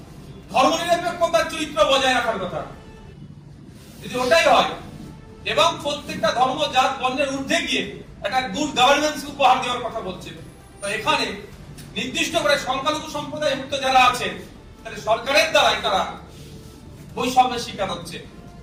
ধর্মনিরপেক্ষতার চরিত্র বজায় রাখার কথা। যদি ওটাই হয় এবং প্রত্যেকটা ধর্ম জাত বর্ণের ঊর্ধ্বে গিয়ে একটা গুড গভর্নেন্স উপহার দেওয়ার কথা বলছে, তো এখানে নির্দিষ্ট করে সংখ্যালঘু সম্প্রদায় মুক্ত যারা আছে তাহলে সরকারের দ্বারাই তারা বৈষম্যের শিকার হচ্ছে।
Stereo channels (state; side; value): identical; both; correlation 1.00